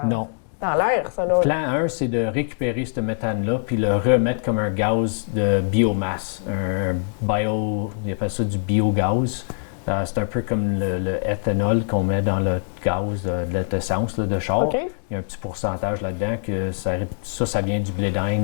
l'air, ça. Là. Plan 1, c'est de récupérer ce méthane-là puis le remettre comme un gaz de biomasse, ils appellent ça du biogaz. C'est un peu comme le éthanol qu'on met dans le gaz de l'essence de char. Okay. Il y a un petit pourcentage là-dedans que ça vient du blé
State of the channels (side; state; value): right; silent; 63 dB below the other